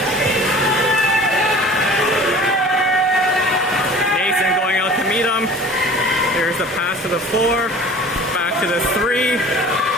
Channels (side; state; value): both; normal; correlation 0.44